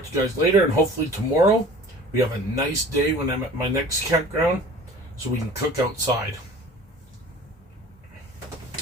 to you guys later, and hopefully tomorrow we have a nice day when I'm at my next campground so we can cook outside.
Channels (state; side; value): normal; both; correlation 0.43